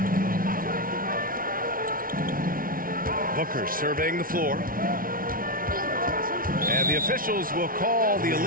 Booker surveying the floor. And the officials will call the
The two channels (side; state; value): left; late; 0.42 ms